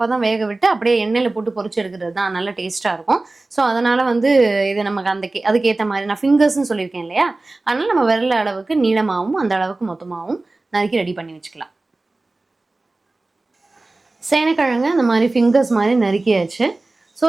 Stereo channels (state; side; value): quieter; left; 3.1 dB